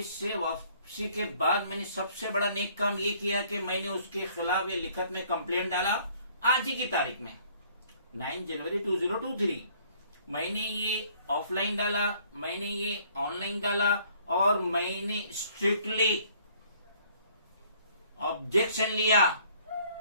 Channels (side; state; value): both; inverted; correlation -0.59